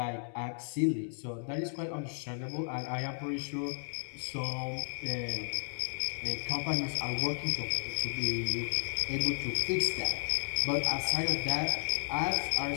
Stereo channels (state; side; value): silent; right; digital silence